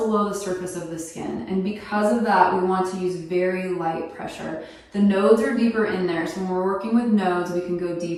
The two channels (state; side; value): identical; both; correlation 1.00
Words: the surface of the skin. And because of that, we want to use very light pressure. The nodes are deeper in there. So when we're working with nodes, we can go